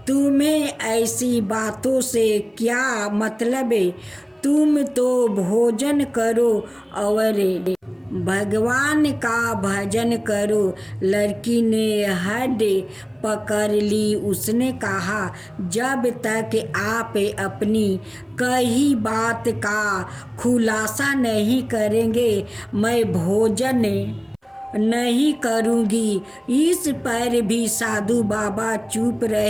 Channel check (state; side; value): identical; both; correlation 1.00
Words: तुम्हें ऐसी बातों से क्या मतलब? तुम तो भोजन करो और भगवान का भजन करो। लड़की ने हड पकड़ ली। उसने कहा, जब तक आप अपनी कही बात का खुलासा नहीं करेंगे मैं भोजन नहीं करूँगी। इस पर भी साधु बाबा चुप